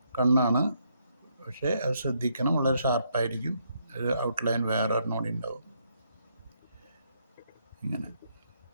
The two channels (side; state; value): both; inverted; correlation -0.75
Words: കണ്ണാണ്, പക്ഷേ അത് ശ്രദ്ധിക്കണം, വളരെ ഷാർപ്പായിരിക്കും. ഒരു ഔട്ട്ലൈൻ വേറെ ഒരെണ്ണോടി ഉണ്ടാവും ഇങ്ങനെ.